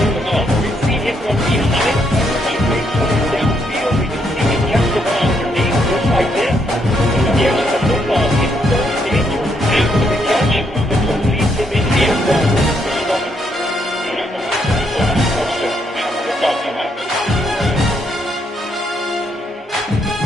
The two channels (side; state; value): both; normal; correlation 0.75